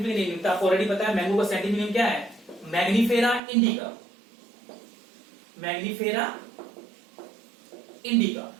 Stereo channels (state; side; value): drops out; left; at 3.4 s